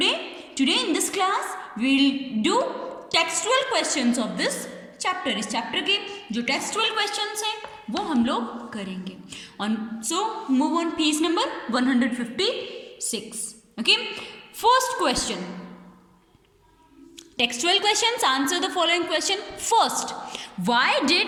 in this class will do textual questions of this chapter. इस चैप्टर के जो टेक्सचुअल क्वेश्चंस हैं वो हम लोग करेंगे। On so move on page number 156। Okay, first question, textual questions, answer the following question. First, why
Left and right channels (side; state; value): both; identical; correlation 1.00